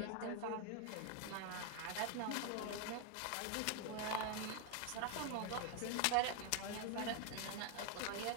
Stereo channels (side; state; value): both; different; correlation 0.01